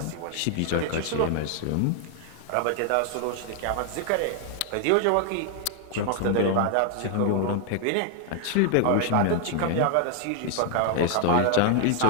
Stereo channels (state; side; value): different; both; correlation 0.00